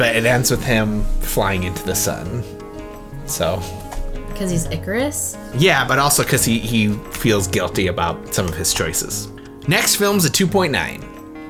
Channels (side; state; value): both; identical; correlation 1.00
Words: it ends with him flying into the sun. So. Because he's Icarus? Yeah, but also because he feels guilty about some of his choices. Next film's a 2.9.